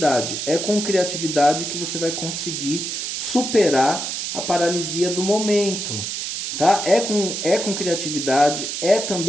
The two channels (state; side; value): noise; right; hiss, 4 dB below the sound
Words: É com criatividade que você vai conseguir superar a paralisia do momento, tá? É com criatividade, é